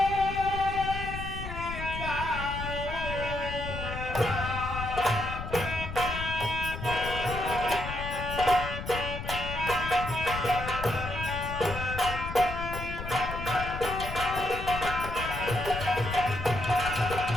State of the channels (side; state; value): left; noise; rumble, 7 dB below the sound